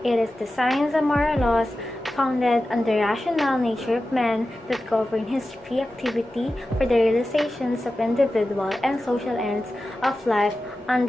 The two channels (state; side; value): normal; both; correlation 0.94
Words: It is the science of moral laws founded on the rational nature of man that govern his free activity for the realizations of individual and social ends of life